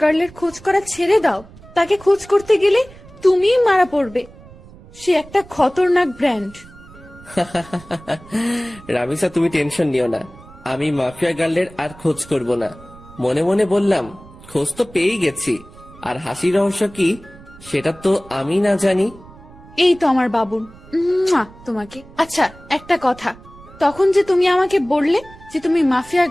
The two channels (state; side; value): noise; right; rumble, 21 dB below the sound